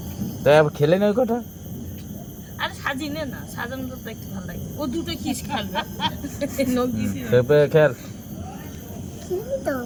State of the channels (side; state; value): both; identical; correlation 1.00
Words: তাই আবার খেলে না ওই কটা। আরে সাজিয়ে নে না, সাজানো তো একটু ভালো লাগে। ও দুটো কিস খাবে খেল, তো